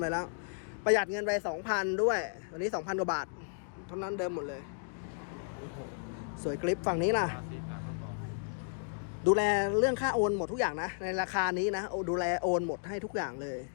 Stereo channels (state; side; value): silent; right; digital silence